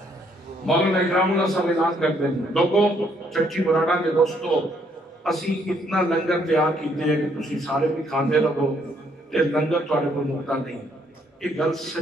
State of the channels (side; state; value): both; normal; correlation 0.69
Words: مولانا اکرام اللہ صاحب اعلان کرتے ہیں لوگوں چچی مرانا کے دوستو اسی اتنا لنگر تیار کیتے ہیں کہ تسی سارے بھی کھاندے رہو تے لنگر تھوڑے کو مکتا نہیں. ایک گل